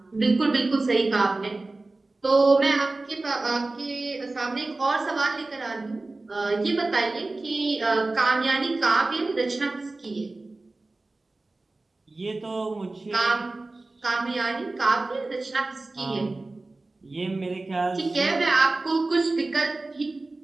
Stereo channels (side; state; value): left; quieter; 3.2 dB